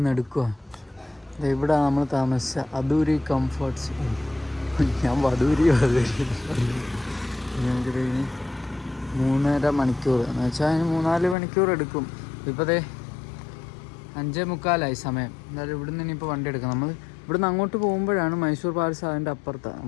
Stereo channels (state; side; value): drops out; right; at 11.4 s